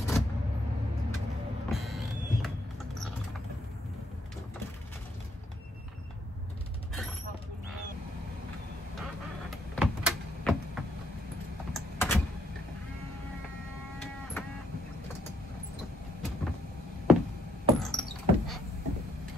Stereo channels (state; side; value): normal; both; correlation 0.71